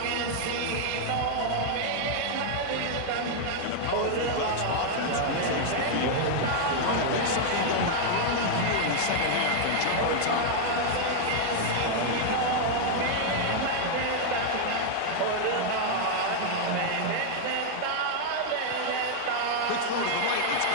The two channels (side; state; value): both; different; correlation -0.01